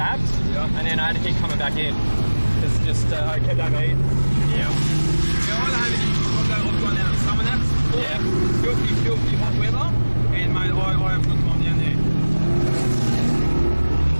and then I had to keep coming back in. It's just I kept overheating. Yeah. I've gone down to summer naps. Yeah. Filthy hot weather, and mate, I have good time down there.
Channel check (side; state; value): both; inverted; correlation -1.00